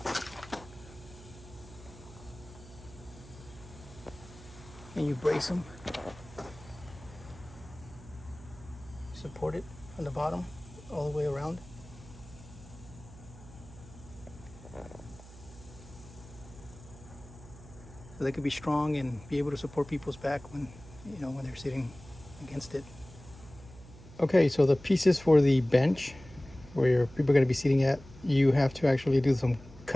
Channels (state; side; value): noise; right; hum, 19 dB below the sound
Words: And you brace them, support it on the bottom all the way around. So they could be strong and be able to support people's back when, you know, when they're sitting against it. Okay, so the pieces for the bench where your people are going to be sitting at, you have to actually do some